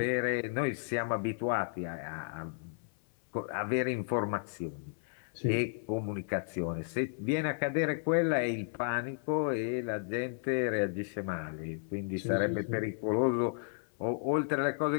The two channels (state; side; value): silent; right; 56 dB below the other